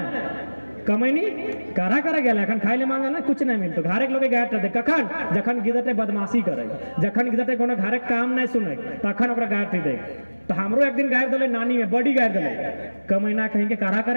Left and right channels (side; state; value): both; inverted; correlation -1.00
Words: कमैनी कारा करा गया अखन खाए ले मांगे ना कुछ नहीं मिलतो घरे के लोग गायर दे कखन जखन गिदटे बदमाशी करे जखन गिदटे कोनो घरे काम नहीं सुने तखन ओकरा गायर दे तो हमरो एक दिन गायर दले नानी में बड़ी गायर दले कमैना कहीं के कारा